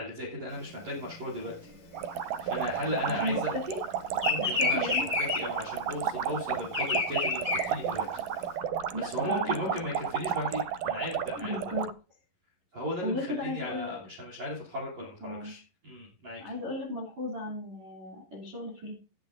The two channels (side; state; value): left; late; 11 ms